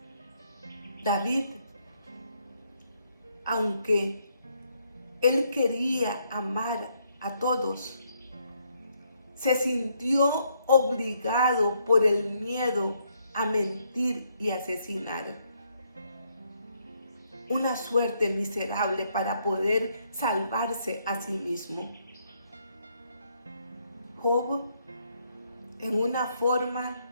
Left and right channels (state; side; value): inverted; both; correlation -0.73